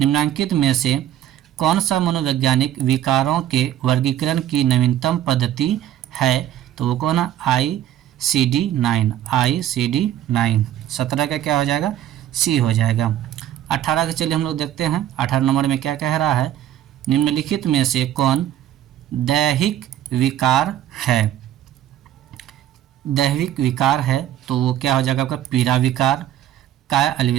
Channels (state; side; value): quieter; left; 11.9 dB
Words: में से कौन सा मनोवैज्ञानिक विकारों के वर्गीकरण की नवीनतम पद्धति है तो वो कौन है, ICD-9, ICD-9। 17 का क्या हो जाएगा, सी हो जाएगा। 18 के चलिए हम लोग देखते हैं। 18 नंबर में क्या कह रहा है, निम्नलिखित में से कौन दैहिक विकार है। दैहिक विकार है तो वो क्या हो जाएगा आपका, पीड़ा विकार, काय